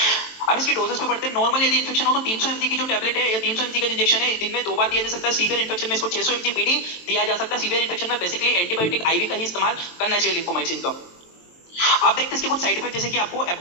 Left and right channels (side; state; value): right; late; 23 ms